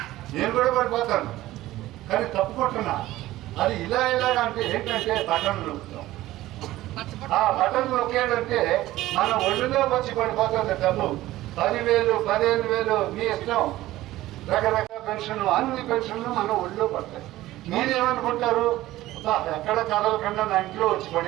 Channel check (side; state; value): left; quieter; 16.0 dB